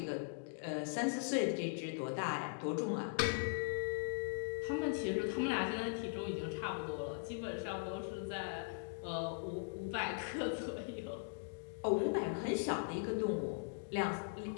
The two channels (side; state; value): right; silent; digital silence